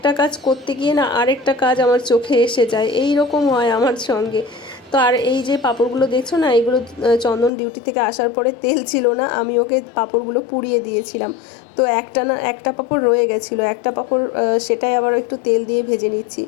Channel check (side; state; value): right; drops out; at 7.5 s